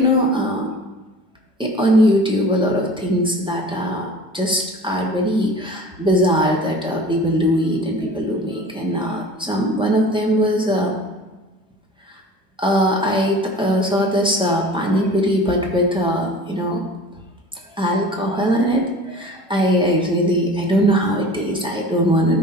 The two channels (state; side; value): normal; both; correlation 0.41